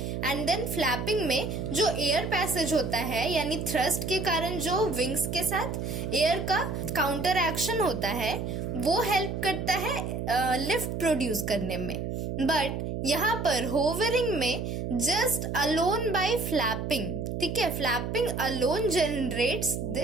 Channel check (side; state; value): right; noise; hum, 3 dB below the sound